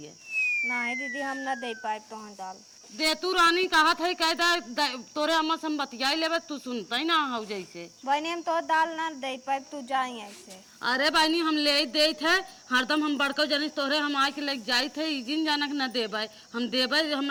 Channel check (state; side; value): identical; both; correlation 1.00